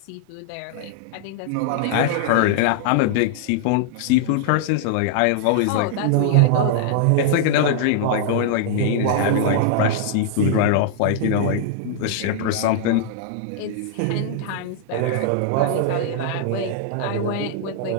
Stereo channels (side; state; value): both; different; correlation -0.01